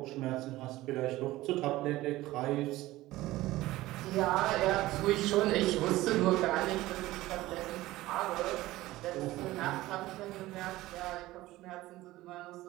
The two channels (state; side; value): quieter; left; 17.3 dB